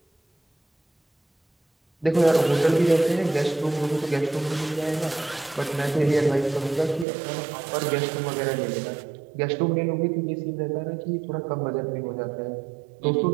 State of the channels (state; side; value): drops out; left; at 7.1 s